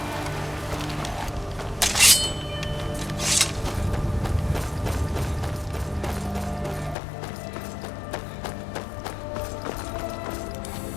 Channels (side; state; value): right; drops out; at 7.0 s